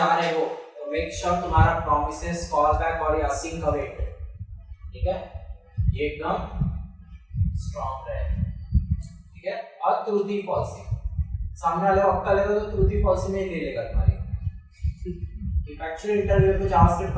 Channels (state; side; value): identical; both; correlation 1.00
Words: रहे हो तो मेक श्योर तुम्हारा प्रॉमिसेस, कॉल बैक और असिंक अवेट, ठीक है, ये एकदम स्ट्रॉन्ग रहे, ठीक है। और ट्रूथी फॉल्सी, सामने वाले वक्त लेगा तो ट्रूथी फॉल्सी में ही ले लेगा तुम्हारी। इफ एक्चुअली इंटरव्यू को जावास्क्रिप्ट